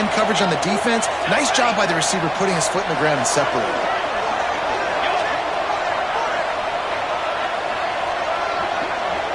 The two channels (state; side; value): noise; left; rumble, 30 dB below the sound